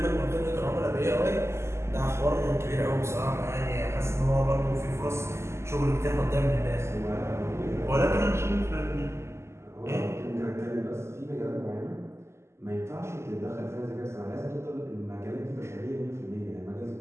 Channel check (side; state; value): left; late; 0.13 ms